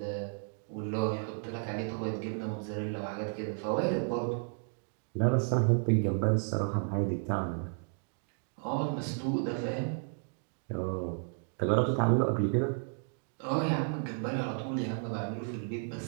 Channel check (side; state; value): left; silent; 56 dB below the other